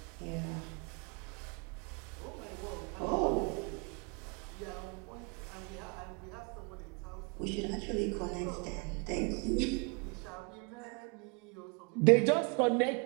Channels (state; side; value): quieter; left; 33.3 dB